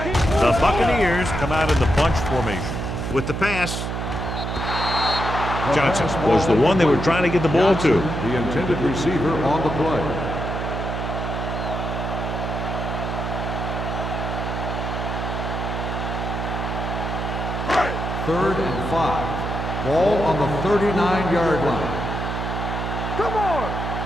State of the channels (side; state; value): right; noise; hum, 3 dB below the sound